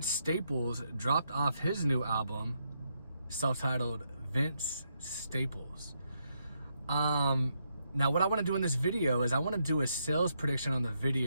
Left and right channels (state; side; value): inverted; both; correlation -0.79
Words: Staples dropped off his new album, self-titled Vince Staples. Now what I want to do in this video is I want to do a sales prediction on the